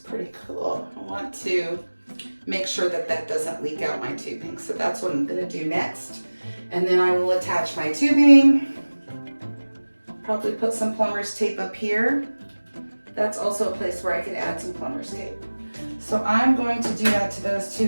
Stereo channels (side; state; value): both; inverted; correlation -1.00